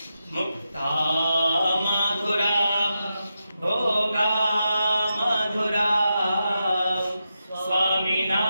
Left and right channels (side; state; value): both; inverted; correlation -0.87